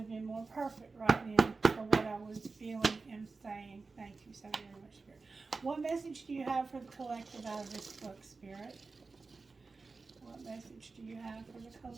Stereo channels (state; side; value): quieter; left; 4.1 dB